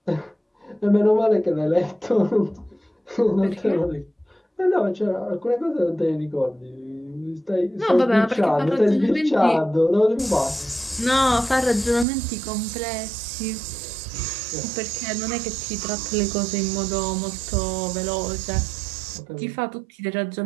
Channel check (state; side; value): drops out; left; at 12.1 s